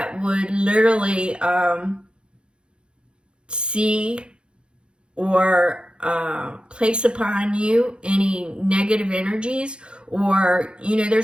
would literally see or place upon you any negative energies, or,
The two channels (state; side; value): late; left; 0.054 ms